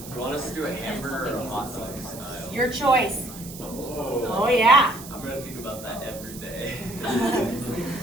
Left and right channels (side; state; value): right; noise; hiss, 14 dB below the sound